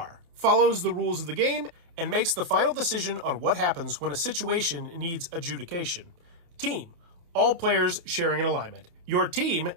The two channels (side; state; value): left; late; 29 ms